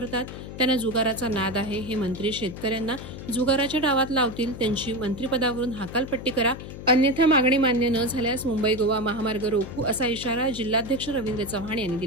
त्यांना जुगाराचा नाद आहे, हे मंत्री शेतकऱ्यांना जुगाराच्या डावात लावतील, त्यांची मंत्रिपदावरून हकालपट्टी करा, अन्यथा मागणी मान्य न झाल्यास मुंबई गोवा महामार्ग रोखू, असा इशारा जिल्हाध्यक्ष रवींद्र चव्हाण यांनी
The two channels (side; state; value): left; noise; hum, 11 dB below the sound